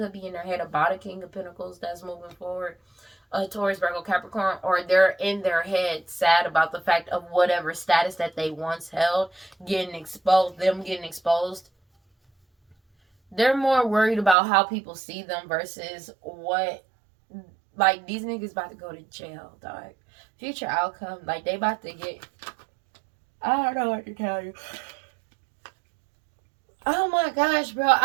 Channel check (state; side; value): drops out; left; at 14.4 s